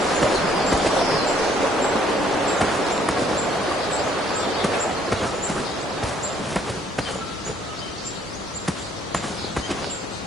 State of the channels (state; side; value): normal; both; correlation 0.64